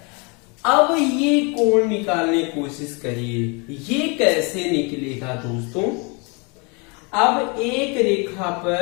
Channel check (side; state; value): right; quieter; 31.6 dB